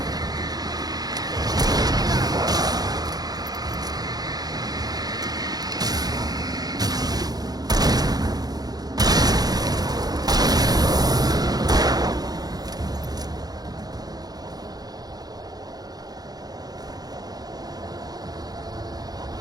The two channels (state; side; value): late; left; 0.19 ms